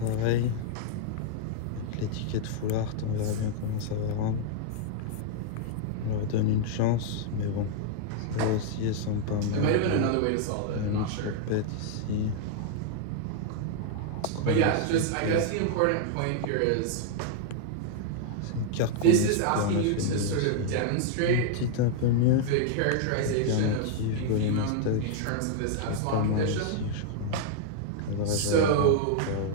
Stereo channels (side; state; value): both; different; correlation 0.00